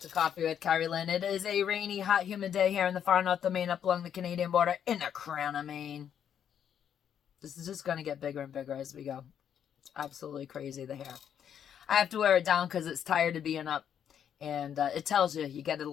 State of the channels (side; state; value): right; quieter; 8.9 dB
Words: Coffee with Kerri-Lynn. It is a rainy, hot, humid day here in the far north of Maine, up along the Canadian border in the crown of Maine. This is just going to get bigger and bigger as we go. It's absolutely crazy, the hair. I have to wear it down because it's tired of being up, and it tells you get a